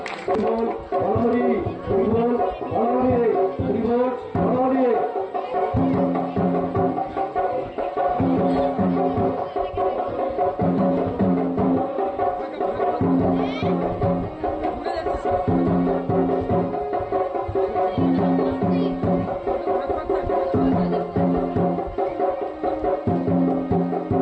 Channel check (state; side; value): identical; both; correlation 1.00